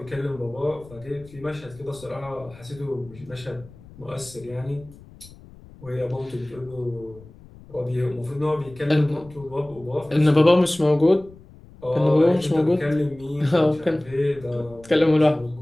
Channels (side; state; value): left; noise; rumble, 21 dB below the sound